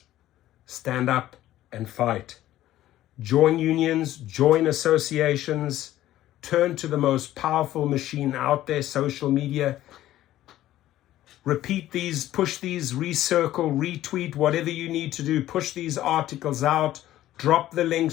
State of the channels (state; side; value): quieter; right; 14.0 dB